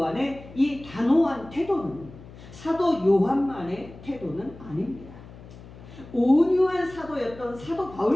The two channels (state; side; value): noise; left; hum, 18 dB below the sound